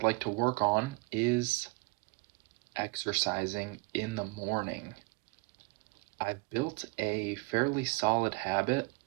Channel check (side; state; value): left; quieter; 28.2 dB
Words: like to work on is exercising in the morning. I've built a fairly solid habit